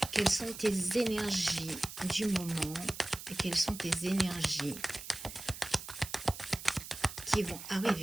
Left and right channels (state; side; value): noise; right; hiss, 11 dB below the sound